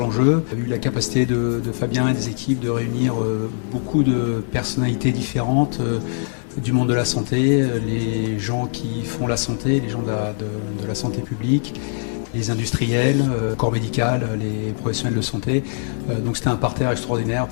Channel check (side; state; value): right; silent; 64 dB below the other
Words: Il y a eu la capacité de Fabien et des équipes de réunir beaucoup de personnalités différentes du monde de la santé, les gens qui font la santé, les gens de la santé publique, les industriels, corps médical, les professionnels de santé. Donc c'était un parterre extraordinaire